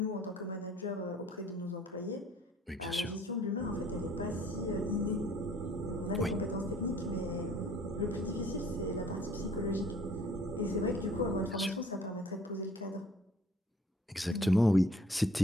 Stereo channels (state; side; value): normal; both; correlation 0.55